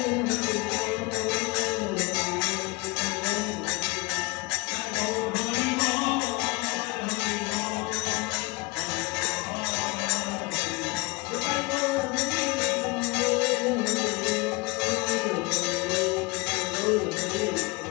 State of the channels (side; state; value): right; quieter; 25.8 dB